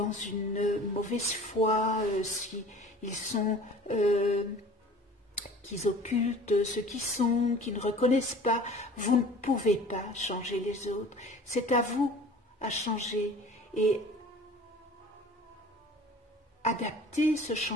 une mauvaise foi, si ils sont qu'ils occultent ce qu'ils sont, qu'ils ne reconnaissent pas, vous ne pouvez pas changer les autres. C'est à vous à changer et adapter ce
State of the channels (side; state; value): both; normal; correlation 0.44